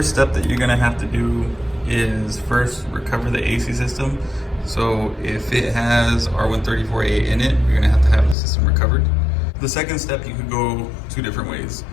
step that you're gonna have to do is first recover the AC system. So if it has R134A in it, you're gonna have to have the system recovered. The second step, you could go two different ways.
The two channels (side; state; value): right; drops out; at 8.3 s